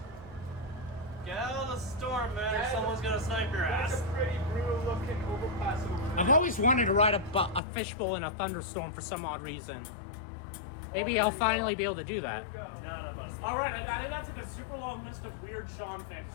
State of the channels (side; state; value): right; drops out; at 7.6 s